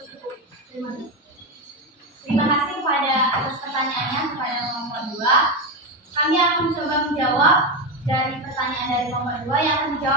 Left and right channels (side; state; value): both; normal; correlation 0.12